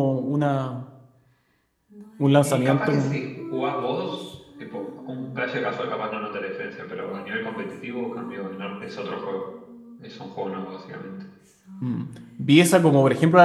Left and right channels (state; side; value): identical; both; correlation 1.00